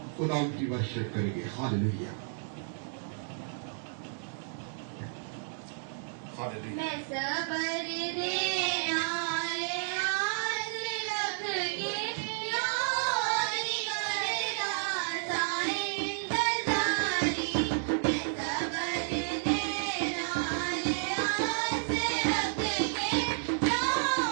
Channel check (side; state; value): left; silent; 57 dB below the other